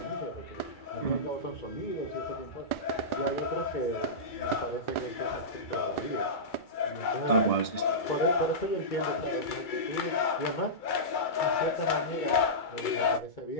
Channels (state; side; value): late; right; 2.3 ms